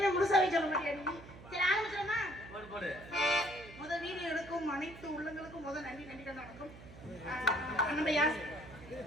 முழுசாவே சொல்ல மாட்டியா நீ? சரி ஆரம்பிச்சிடமா? போடு. முதல் வீடியோ எடுக்கும் அனைத்து உள்ளங்களுக்கும் முதல் நன்றி நன்றிகள் வணக்கம். அண்ணன்யா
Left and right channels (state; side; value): noise; right; hum, 17 dB below the sound